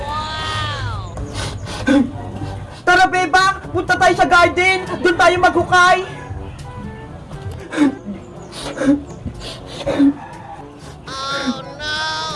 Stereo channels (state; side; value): identical; both; correlation 1.00